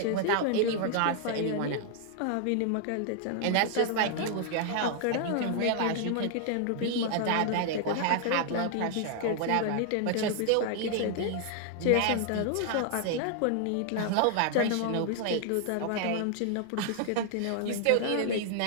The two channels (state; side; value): different; both; correlation 0.00